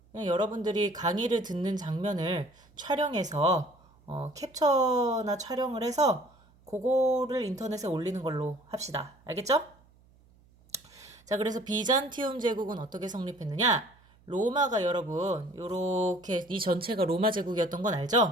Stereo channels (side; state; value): right; noise; hum, 29 dB below the sound